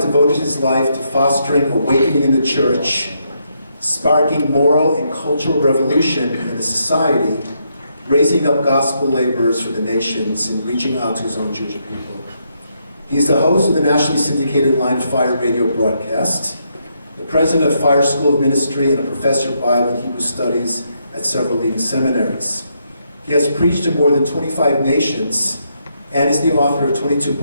devoted his life to fostering awakening in the church, sparking moral and cultural revolution in the society, raising up gospel laborers for the nations, and reaching out to his own Jewish people. He's the host of the nationally syndicated Line of Fire radio broadcast, the president of Fire School of Ministry, and a professor of Bible and Hebrew Studies at several leading seminaries. He has preached to more than 25 nations and is the author of 22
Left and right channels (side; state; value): both; inverted; correlation -0.78